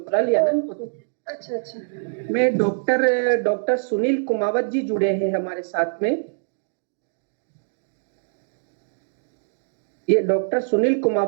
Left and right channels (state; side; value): silent; left; digital silence